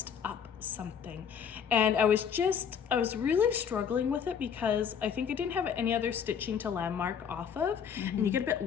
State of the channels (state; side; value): quieter; right; 7.5 dB